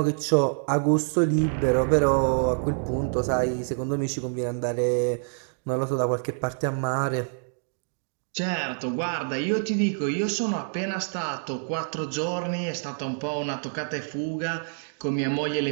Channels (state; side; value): silent; left; digital silence